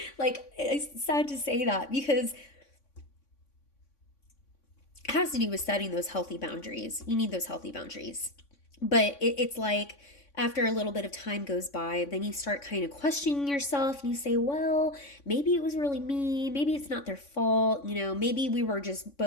Like, it's sad to say that because it has to do with setting those healthy boundaries. You need those healthy boundaries. But it's like, after a little bit of time goes by, then you start kind of questioning yourself and you say, well, maybe it was really me. Maybe it's not their fault. Maybe we were just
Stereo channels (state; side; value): late; right; 3.5 ms